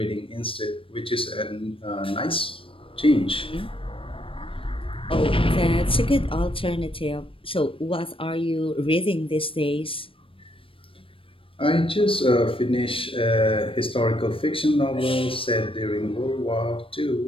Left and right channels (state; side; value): late; right; 0.26 ms